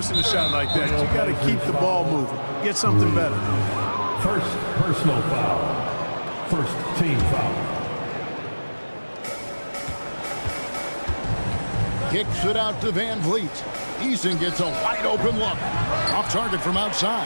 a shot like that. You got to keep the ball moving. Get something better. First personal foul. First team foul. Kicks it out to Van Vliet. Eason gets a wide open look. Off target from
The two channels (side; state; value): both; inverted; correlation -1.00